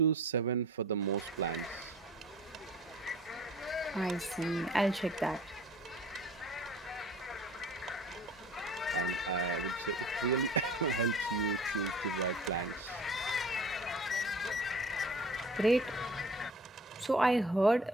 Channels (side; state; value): both; normal; correlation 0.45